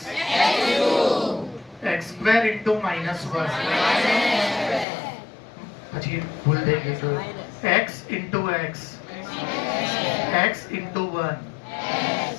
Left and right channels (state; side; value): drops out; right; at 4.9 s